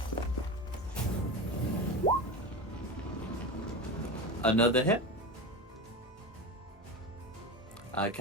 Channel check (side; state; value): both; normal; correlation 0.23